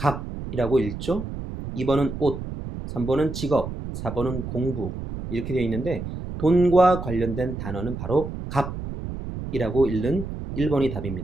읽죠. 2번은 옷, 3번은 직업, 4번은 공부 이렇게 되어 있는데 돈과 관련된 단어는 바로 값이라고 읽는 1번이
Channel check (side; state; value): right; noise; rumble, 7 dB below the sound